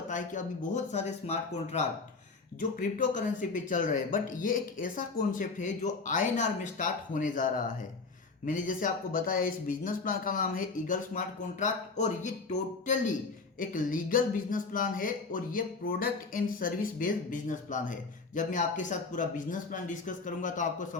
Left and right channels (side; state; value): right; quieter; 4.1 dB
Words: है कि अभी बहुत सारे स्मार्ट कॉन्ट्रैक्ट जो क्रिप्टो करेंसी पे चल रहे हैं, बट ये एक ऐसा कॉन्सेप्ट है जो आईएनआर में स्टार्ट होने जा रहा है। मैंने जैसे आपको बताया, इस बिजनेस प्लान का नाम है ईगल स्मार्ट कॉन्ट्रैक्ट और ये टोटली एक लीगल बिजनेस प्लान है और ये product and service based business plan है। जब मैं आपके साथ पूरा बिजनेस प्लान डिस्कस करूंगा तो आपको